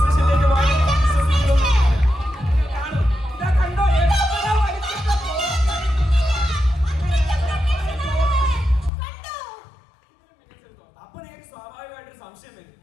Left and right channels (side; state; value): right; drops out; at 8.9 s